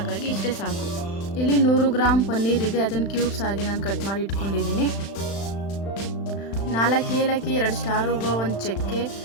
ಇಷ್ಟೇ ಸಾಕು. ಇಲ್ಲಿ 100 ಗ್ರಾಮ್ ಪನ್ನೀರ್ ಇದೆ, ಅದನ್ನು ಕ್ಯೂಬ್ಸ್ ಆಗಿ ನಾನು ಕಟ್ ಮಾಡಿ ಇಟ್ಕೊಂಡಿದ್ದೀನಿ. 4 ಏಲಕ್ಕಿ, 2 ಸ್ಟಾರ್ ಹೂವು, 1 ಚಕ್ಕೆ,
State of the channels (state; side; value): late; right; 35 ms